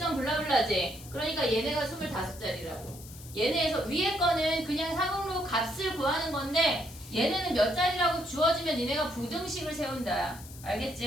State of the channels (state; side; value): noise; left; hiss, 17 dB below the sound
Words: 블라블라지. 그러니까 얘네가 25자리라고. 얘네에서 위에 거는 그냥 상용로 값을 구하는 건데 얘네는 몇 자리라고 주어지면 니네가 부등식을 세운다.